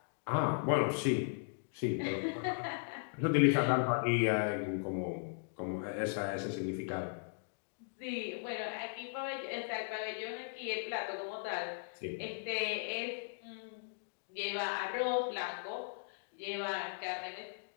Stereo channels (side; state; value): right; silent; digital silence